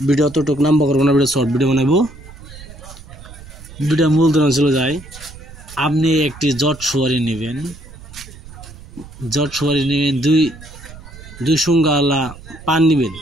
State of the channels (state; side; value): noise; right; rumble, 17 dB below the sound